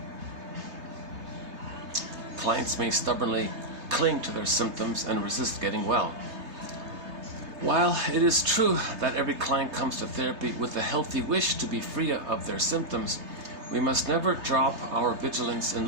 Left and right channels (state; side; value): late; left; 3.3 ms